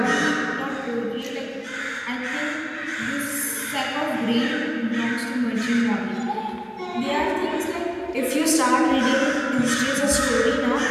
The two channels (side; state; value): both; identical; correlation 1.00